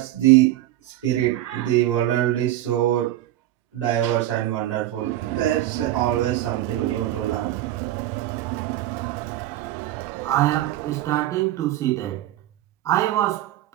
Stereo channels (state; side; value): quieter; left; 14.1 dB